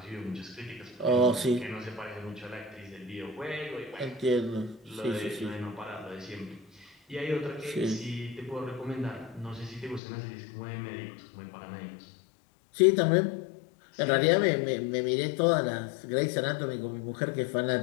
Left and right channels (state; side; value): drops out; right; at 10.0 s